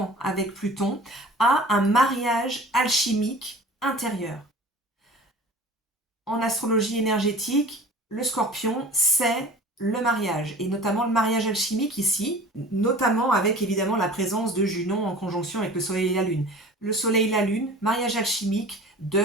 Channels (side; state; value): both; normal; correlation 0.42